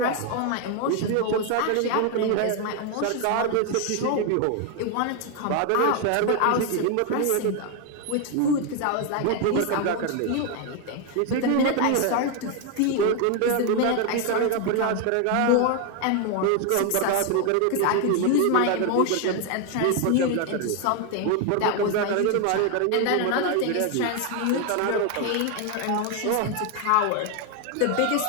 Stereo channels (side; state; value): both; different; correlation 0.01